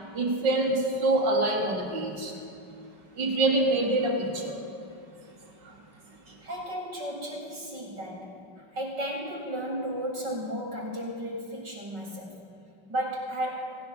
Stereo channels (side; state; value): left; late; 5.3 ms